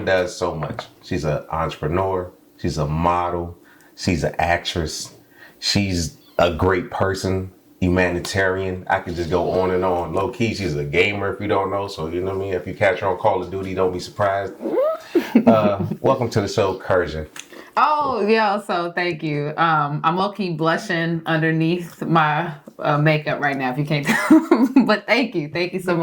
does so much. She's an entrepreneur. She's a model. She's an actress. She's a great person. Humanitarian. I could just go on and on. Low key, she's a gamer if you don't know. So you know what I mean. If you catch her on Call of Duty, don't be surprised. Welcome to the show, Kirjah. Oh yeah, so thank you. I'm low key blushing underneath my makeup right now. If you can't tell, but thank you so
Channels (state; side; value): identical; both; correlation 1.00